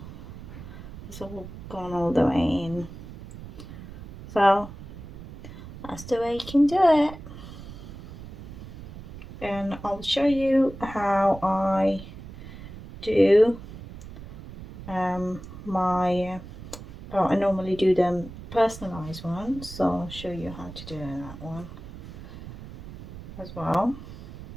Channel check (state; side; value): noise; right; rumble, 13 dB below the sound